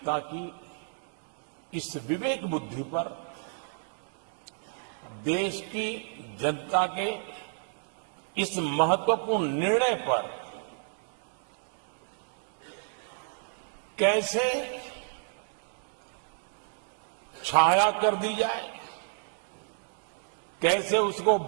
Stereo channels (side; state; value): left; silent; digital silence